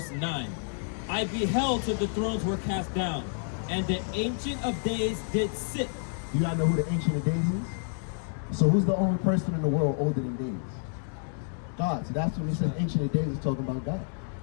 9. I beheld till the thrones were cast down, and the Ancient of Days did sit. You gotta know who the Ancient of Days is? So who's the only person in the world older than days? God. So that's when he says Ancient of Days is talking about God.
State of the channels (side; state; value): right; silent; 58 dB below the other